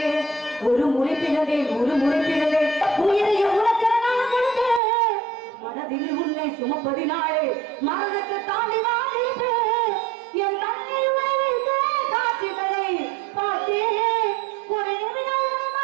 ஒரு முறை பிறந்தே உயிரைய உனக்கு நான் கொடுத்தேன் மனதில் உன்னை சுமப்பதினாலே மரணத்தை தாண்டி வாழ்ந்திருப்பேன் என் கண்ணில் வைத்த காட்சிகளை பார்த்தேன் ஒரு நிமிடம்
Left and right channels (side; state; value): left; drops out; at 4.8 s